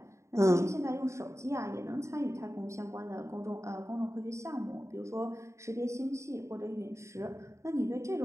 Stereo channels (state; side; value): late; left; 0.14 ms